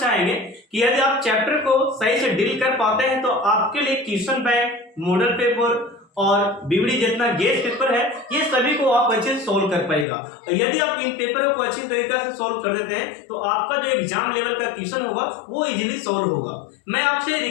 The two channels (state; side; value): drops out; right; at 10.1 s